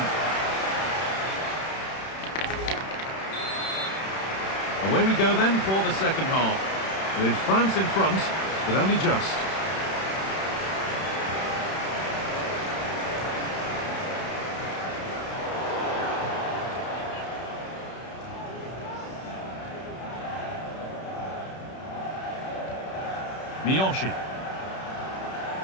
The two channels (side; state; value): right; late; 31 ms